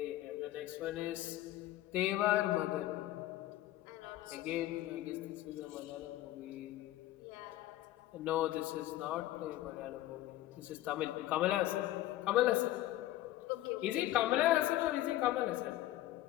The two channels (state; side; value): quieter; right; 15.1 dB